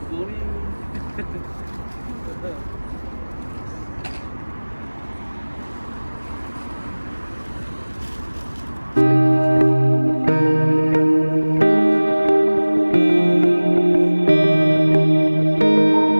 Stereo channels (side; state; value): both; inverted; correlation -1.00